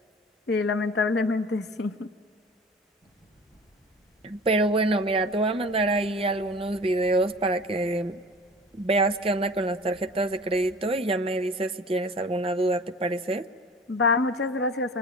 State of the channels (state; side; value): normal; both; correlation 0.42